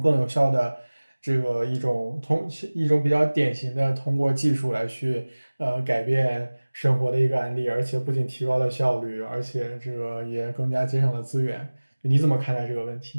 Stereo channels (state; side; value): inverted; both; correlation -1.00